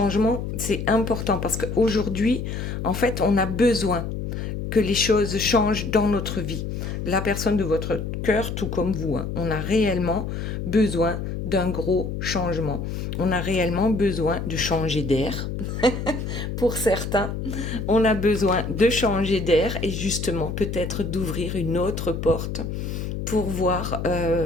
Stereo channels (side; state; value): left; noise; hum, 4 dB below the sound